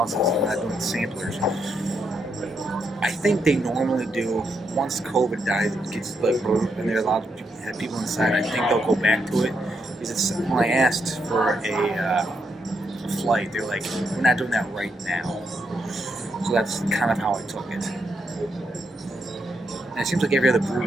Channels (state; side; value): normal; both; correlation 0.80